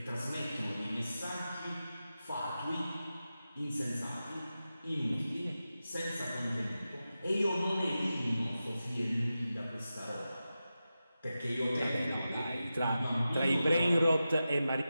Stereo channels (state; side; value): inverted; both; correlation -0.92